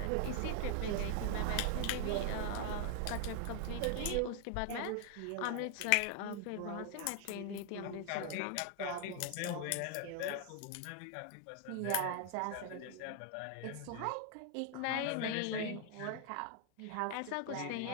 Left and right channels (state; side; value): different; both; correlation 0.00